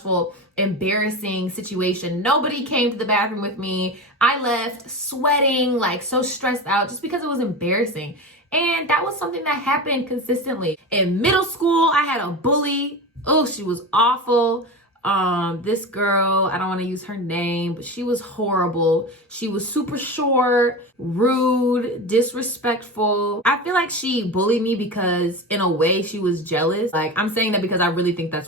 embarrassing situation. Nobody came to the bathroom with me. I left sweating, like so stressed out just because it was embarrassing. And that was something that happened consistently. In middle school, I had a bully. Oh, she was awful. This girl, I don't want to use her name, but she was horrible. She was super short, rude, disrespectful. I feel like she bullied me because in a way she was jealous. Like I'm saying that because I really think that's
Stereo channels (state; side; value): normal; both; correlation 0.25